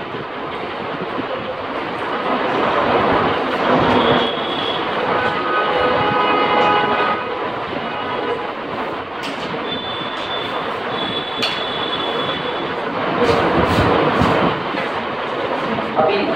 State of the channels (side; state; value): right; noise; rumble, 28 dB below the sound